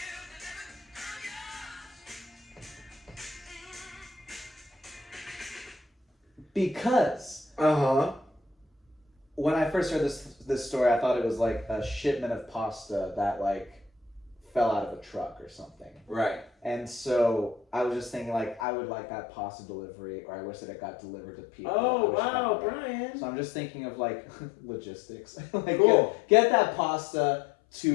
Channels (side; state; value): right; drops out; at 18.6 s